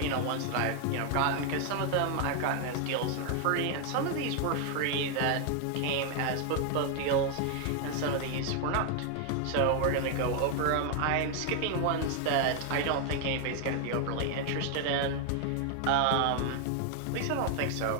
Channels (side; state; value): both; different; correlation 0.00